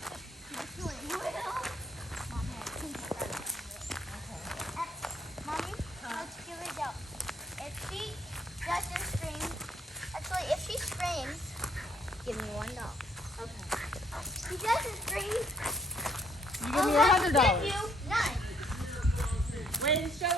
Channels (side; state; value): both; normal; correlation 0.68